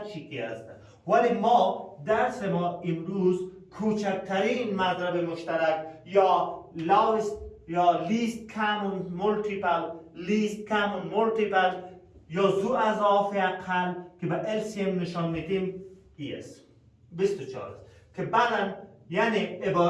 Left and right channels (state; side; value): identical; both; correlation 1.00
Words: چی که است. ولی ما درس ما امروز کوچکترین مضرب مشترک یا least common multiple یا ذو اضافه اقل که به LCM نشان میدیم ای است. 24 است که بعدا یعنی